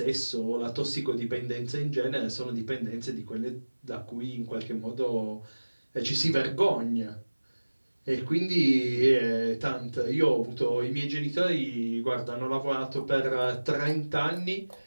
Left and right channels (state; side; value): inverted; both; correlation -1.00